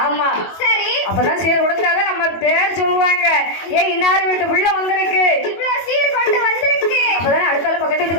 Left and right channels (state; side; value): late; right; 21 ms